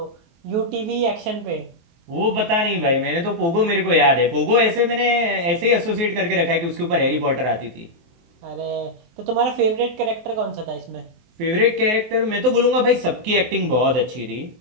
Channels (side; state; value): left; late; 24 ms